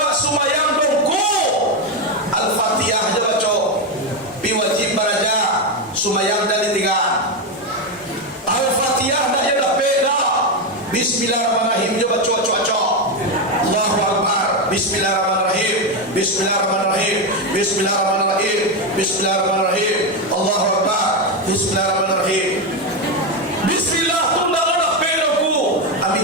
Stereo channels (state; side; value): normal; both; correlation 0.09